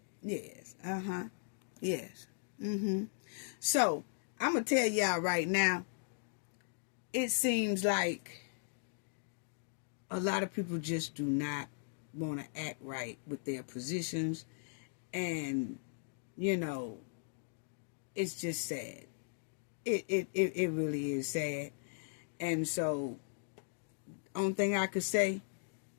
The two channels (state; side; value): silent; right; digital silence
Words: Yes. Yes. So I'm going to tell y'all right now, it seems like a lot of people just do not want to act right with their positions. And, you know, it's just sad. It really is sad. And so, only thing I could say,